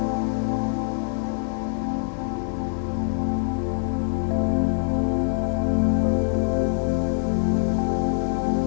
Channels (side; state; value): right; silent; digital silence